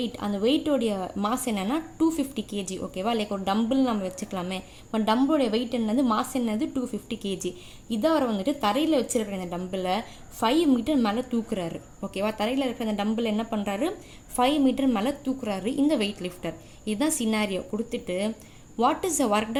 அந்த வெயிட்டோடைய மாஸ் என்னென்னா 250 kg. ஓகேவா, லைக் ஒரு டம்பிள் நம்ம வச்சுக்கலாமே. இப்போ டம்பிளோடைய வெயிட் என்னது, மாஸ் என்னது 250 kg. இதை அவர் வந்துட்டு தரையில் வச்சுருக்கிற இந்த டம்பிளை 5 மீட்டர் மேலே தூக்குறாரு. ஓகேவா, தரையில் இருக்கிற அந்த டம்பிள் என்ன பண்ணுறாரு, 5 மீட்டர் மேலே தூக்குறாரு இந்த வெயிட் லிஃப்டர். இதுதான் சினாரியோ கொடுத்துட்டு, what is the work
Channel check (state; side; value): identical; both; correlation 1.00